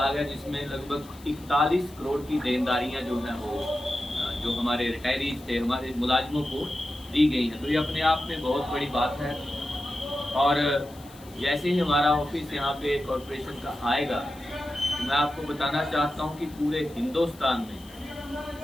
है जिसमें लगभग 41 करोड़ की देनदारियां जो हैं वो जो हमारे रिटायरीज थे, हमारे मुलाजिमों को दी गई हैं। तो ये अपने आप में बहुत बड़ी बात है। और जैसे ही हमारा ऑफिस यहाँ पे कॉरपोरेशन का आएगा तो मैं आपको बताना चाहता हूँ कि पूरे हिंदुस्तान में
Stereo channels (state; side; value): noise; left; hiss, 23 dB below the sound